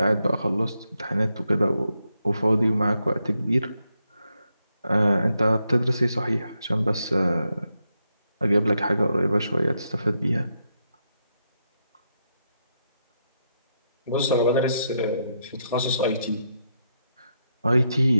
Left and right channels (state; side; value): inverted; both; correlation -0.81